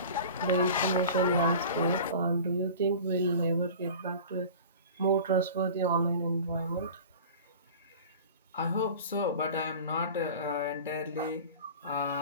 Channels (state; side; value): inverted; both; correlation -0.39